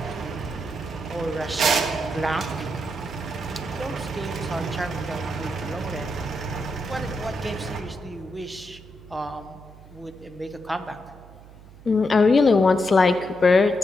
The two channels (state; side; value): noise; right; hum, 20 dB below the sound